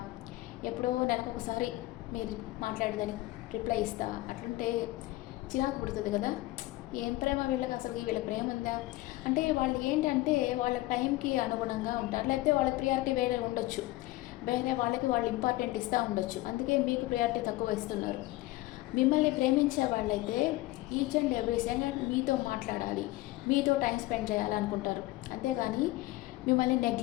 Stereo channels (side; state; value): right; quieter; 18.5 dB